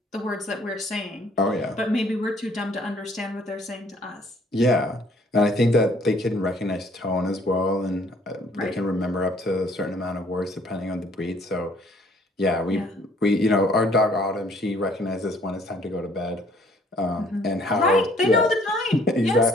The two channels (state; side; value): normal; both; correlation 0.61